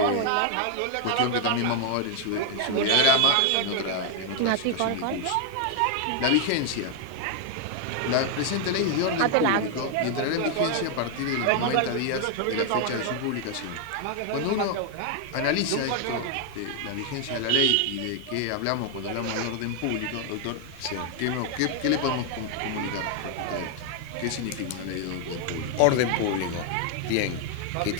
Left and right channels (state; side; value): different; both; correlation 0.00